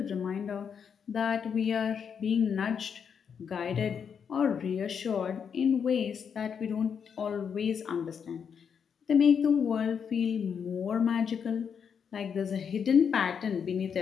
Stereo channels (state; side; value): quieter; right; 7.0 dB